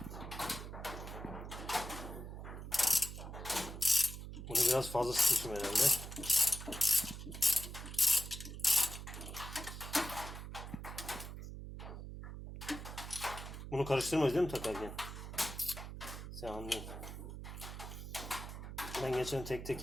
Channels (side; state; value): right; noise; hum, 9 dB below the sound